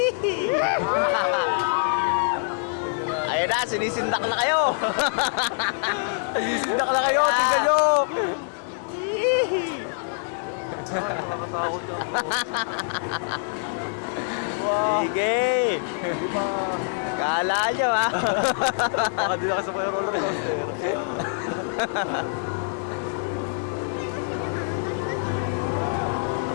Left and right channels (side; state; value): right; silent; 58 dB below the other